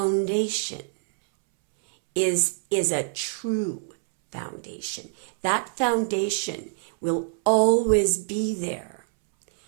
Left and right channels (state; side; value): silent; left; 62 dB below the other